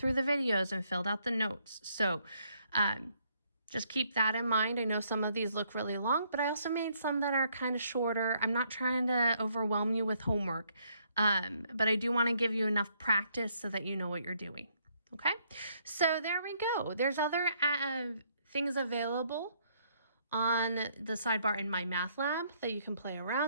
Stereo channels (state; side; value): inverted; both; correlation -0.69